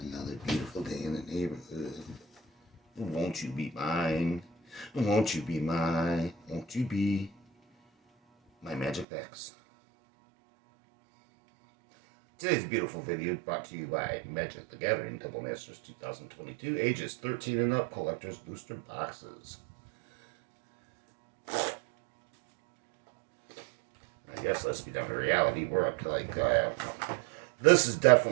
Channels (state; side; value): drops out; left; at 9.1 s